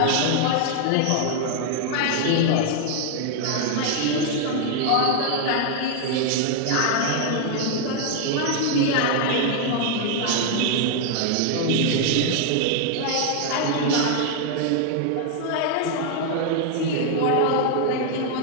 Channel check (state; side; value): different; both; correlation 0.00